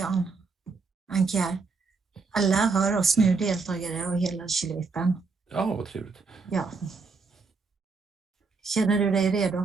Anki här. Alla hör oss nu, deltagare och hela Kylvippen. Ja, vad trevligt. Ja. Känner du dig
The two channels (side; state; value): left; quieter; 4.5 dB